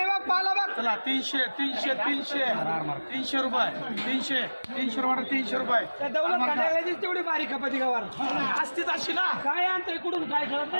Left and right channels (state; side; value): inverted; both; correlation -1.00